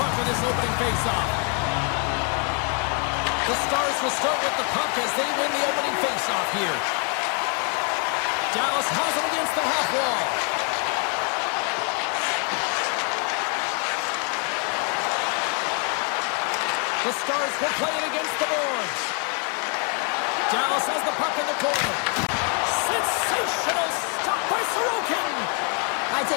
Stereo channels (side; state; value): right; quieter; 39.1 dB